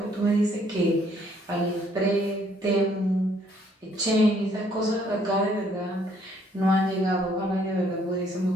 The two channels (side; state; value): both; normal; correlation 0.65